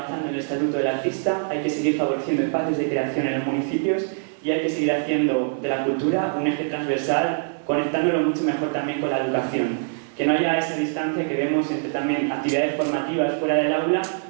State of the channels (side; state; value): left; silent; 63 dB below the other